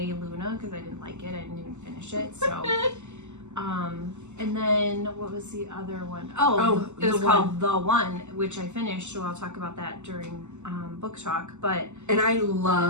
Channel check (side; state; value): left; late; 0.83 ms